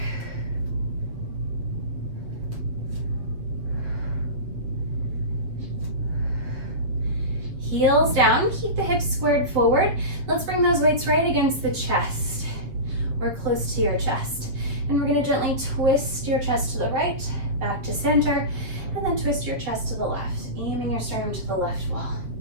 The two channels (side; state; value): left; late; 7.6 ms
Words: Heels down, keep the hips squared forward. Let's bring those weights right against the chest or close to your chest. And we're gonna gently twist your chest to the right, back to center, and then twist your chest to the left, aiming your sternum to the left wall.